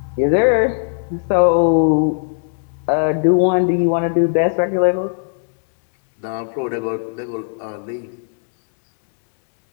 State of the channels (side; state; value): right; silent; digital silence